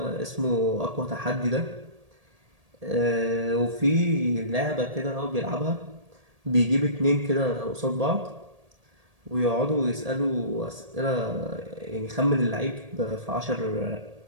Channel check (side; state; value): left; late; 1.8 ms